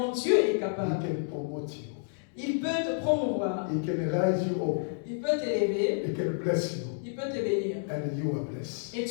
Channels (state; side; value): silent; right; digital silence